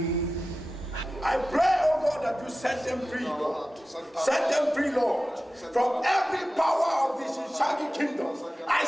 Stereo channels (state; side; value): normal; both; correlation 0.94